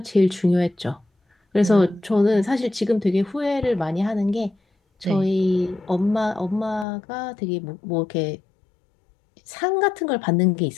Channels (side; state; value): right; drops out; at 6.9 s